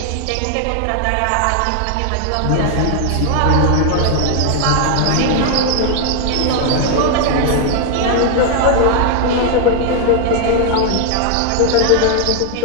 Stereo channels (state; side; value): different; both; correlation 0.00